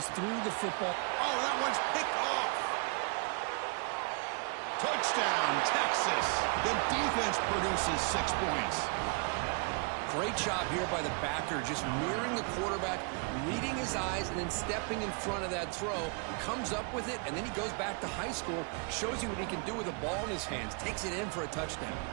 threw the football. Oh, that one's picked off. Touchdown, Texas. The defense produces 6 points. Great job here by the backer, just mirroring the quarterback, reading his eyes, and then stepping in front of that throw, comes up with it, and then he goes back to high school, shows you what he can do with a ball in his hands, takes it in for a touchdown.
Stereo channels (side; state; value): left; quieter; 36.0 dB